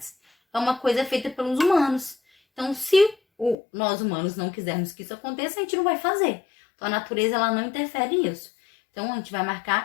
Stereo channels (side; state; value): right; drops out; at 3.6 s